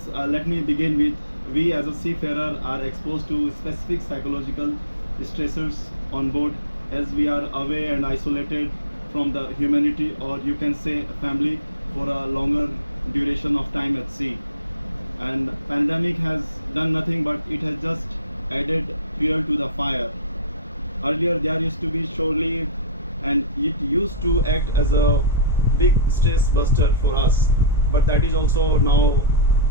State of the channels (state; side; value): inverted; both; correlation -0.35